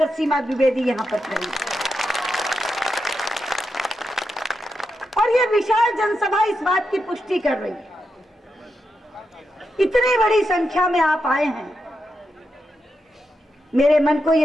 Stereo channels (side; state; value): both; normal; correlation 0.86